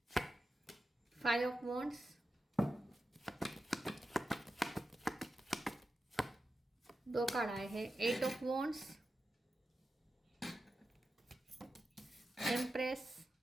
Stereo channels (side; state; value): both; normal; correlation 0.91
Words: five of wands, दो कार्ड आए हैं। Eight of wands, empress.